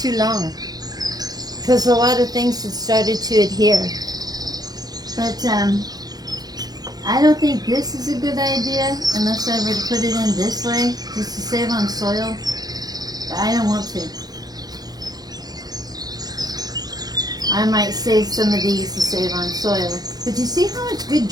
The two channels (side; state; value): left; late; 0.19 ms